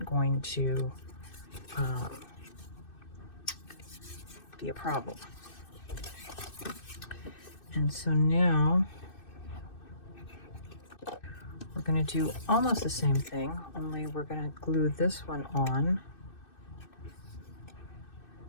going to be a problem. And so now we're going to do almost the same thing, only we're going to glue this one on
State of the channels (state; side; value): late; right; 2.6 ms